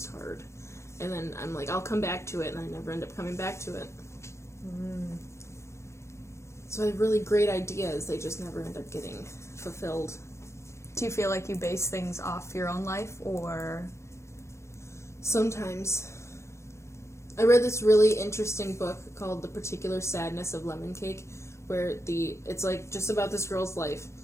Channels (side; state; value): right; late; 0.13 ms